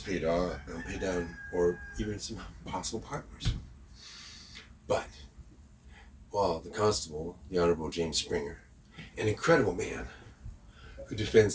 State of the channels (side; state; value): both; identical; correlation 1.00